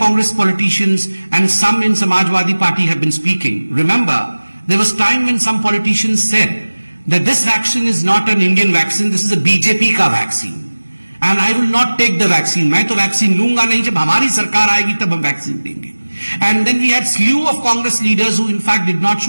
politicians and some in Samajwadi Party have been speaking, remember, there was time when some politicians said that this vaccine is not an Indian vaccine, this is a BJP का vaccine. And I will not take the vaccine. मैं तो vaccine लूंगा नहीं, जब हमारी सरकार आएगी तब हम vaccine देंगे. And then we had slew of Congress leaders who in fact did not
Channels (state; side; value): inverted; both; correlation -1.00